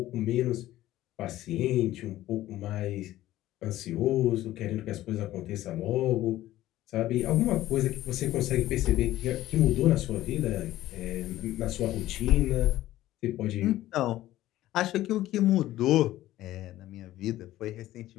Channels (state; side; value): quieter; right; 14.9 dB